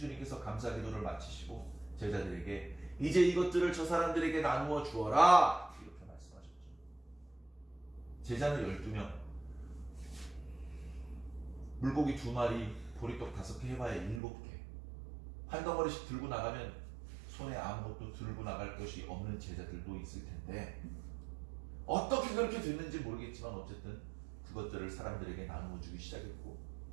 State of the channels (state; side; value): drops out; left; at 14.2 s